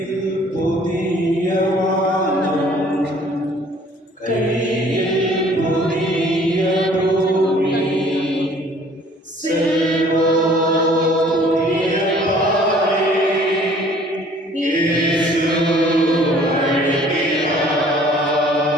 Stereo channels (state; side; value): normal; both; correlation 0.55